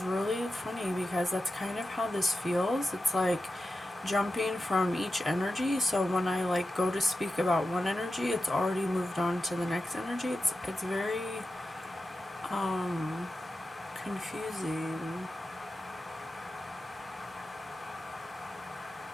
really funny because that's kind of how this feels. It's like jumping from each energy. So when I like go to speak about one energy, it's already moved on to the next energy. It's very confusing.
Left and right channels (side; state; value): both; normal; correlation 0.92